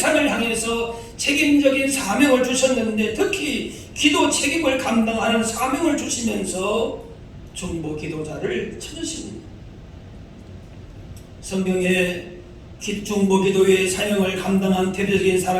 향해서 책임적인 사명을 주셨는데 특히 기도 책임을 감당하는 사명을 주시면서 중보 기도자를 찾으십니다. 성경에 중보 기도의 사명을 감당한 대표적인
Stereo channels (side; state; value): both; identical; correlation 1.00